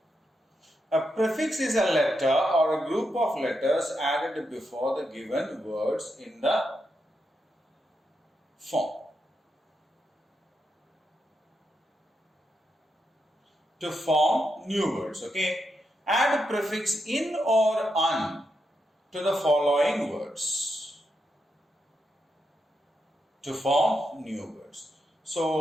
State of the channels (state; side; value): normal; both; correlation 0.84